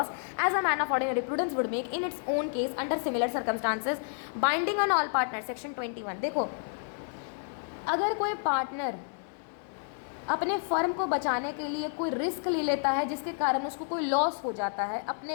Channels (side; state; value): right; silent; digital silence